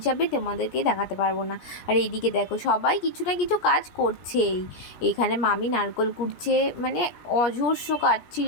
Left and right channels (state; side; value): late; right; 17 ms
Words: তোমাদেরকে দেখাতে পারবো না। আর এইদিকে দেখো সবাই কিছু না কিছু কাজ করছেই। এখানে মামি নারকোল কুটছে, মানে অজস্র কাজ ছিল,